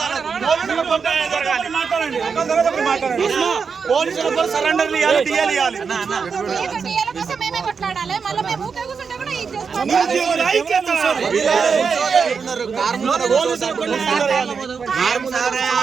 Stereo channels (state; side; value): quieter; left; 5.7 dB